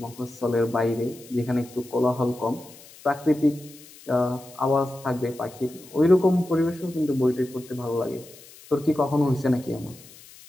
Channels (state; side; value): noise; left; hiss, 21 dB below the sound